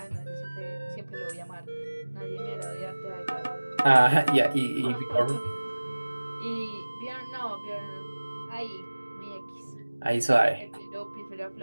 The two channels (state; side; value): inverted; both; correlation -1.00